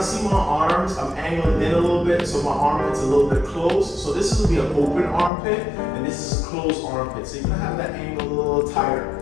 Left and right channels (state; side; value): drops out; right; at 5.3 s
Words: see my arms, I'm angling in a little bit, so my armpit's a little bit closed. So this will be an open armpit, and this is a closed armpit. So you're gonna have that angle a little